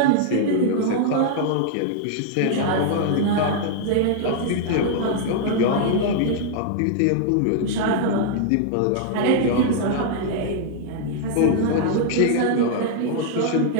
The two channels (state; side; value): different; both; correlation -0.01